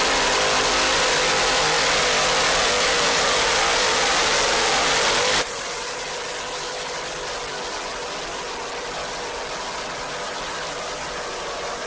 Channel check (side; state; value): both; identical; correlation 1.00